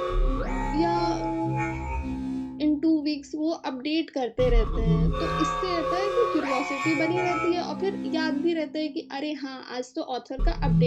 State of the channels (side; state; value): both; identical; correlation 1.00